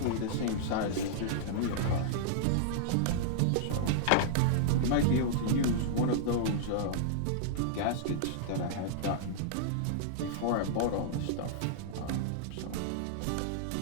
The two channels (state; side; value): different; both; correlation -0.01